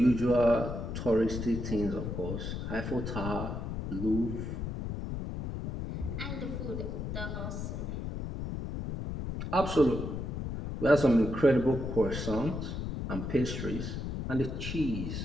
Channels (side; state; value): left; noise; rumble, 4 dB below the sound